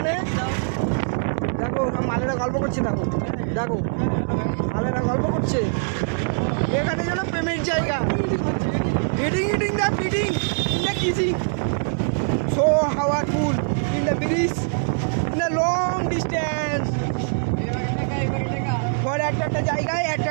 দেখো মালেরা গল্প করছে, দেখো দেখো মালেরা গল্প করছে। এখানে যেন প্রেমের জায়গা, eating the fitting in the kissing, so powerful in the bridge in the long distance. For একটা জায়গায়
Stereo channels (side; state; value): left; silent; 63 dB below the other